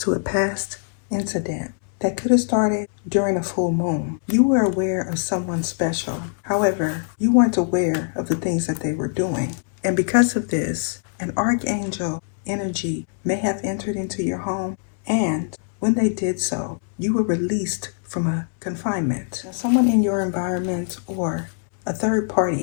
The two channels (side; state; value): right; silent; digital silence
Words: a past incident that could have started during a full moon, you were aware of someone special. However, you weren't aware of the things that they were doing. And because of this, an archangel energy may have entered into your home, and when they did so, you were released from a confinement. Now, someone in your environment or a third